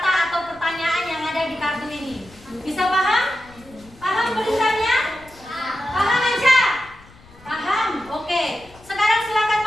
atau pertanyaan yang ada di kartu ini. Bisa paham? Paham tulisannya? Paham aja? Paham? Oke. Sekarang silakan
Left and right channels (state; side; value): noise; left; rumble, 24 dB below the sound